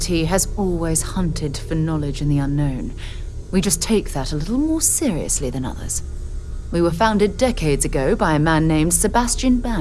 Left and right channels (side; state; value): both; identical; correlation 1.00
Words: has always hunted for knowledge in the unknown. We just take that a little more seriously than others. We were founded decades ago by a man named Sebastian